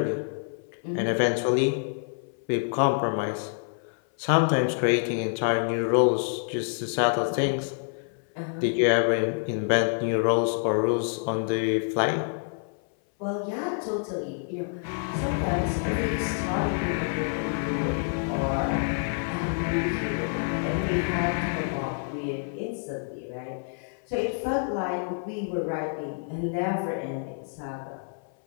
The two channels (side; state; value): right; silent; 57 dB below the other